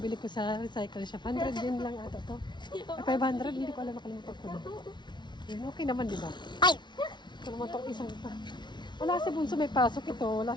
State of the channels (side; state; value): right; late; 0.21 ms